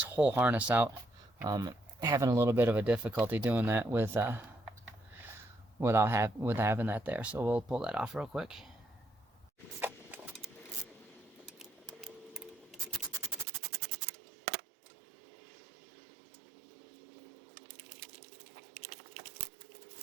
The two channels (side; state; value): left; drops out; at 13.5 s